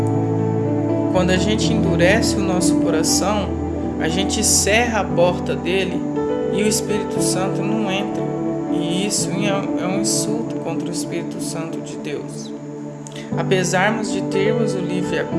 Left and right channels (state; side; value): identical; both; correlation 1.00